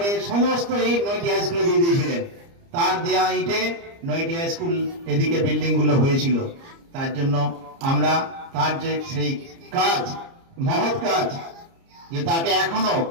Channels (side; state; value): left; late; 30 ms